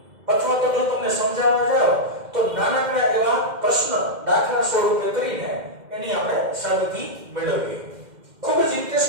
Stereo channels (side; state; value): left; late; 2.1 ms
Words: અથવા તો જો તમને સમજાવવા જાવ તો નાનકડા એવા પ્રશ્ન દાખલા સ્વરૂપે કરીને એની આપણે સાબિતી મેળવીએ. ખૂબ જ